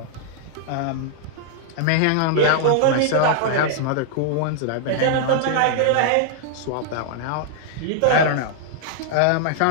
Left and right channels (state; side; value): different; both; correlation -0.01